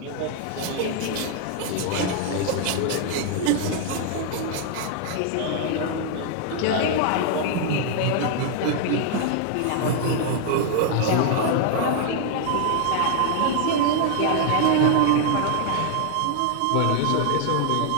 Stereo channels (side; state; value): both; different; correlation 0.00